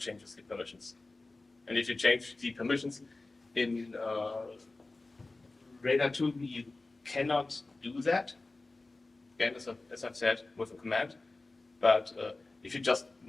changes the permissions. And if you change the permissions in Radar 2, you cannot do that. Again, as I've said, with a command. But if you just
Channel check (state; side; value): quieter; right; 3.2 dB